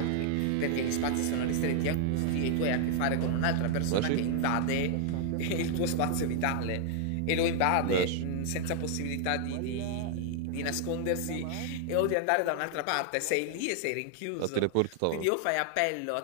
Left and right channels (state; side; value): different; both; correlation 0.00